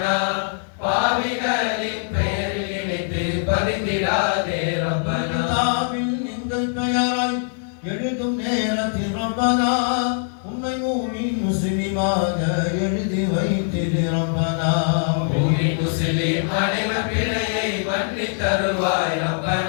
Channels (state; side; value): silent; right; 64 dB below the other